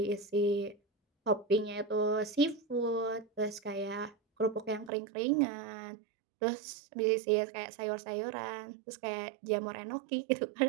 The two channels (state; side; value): drops out; left; at 4.9 s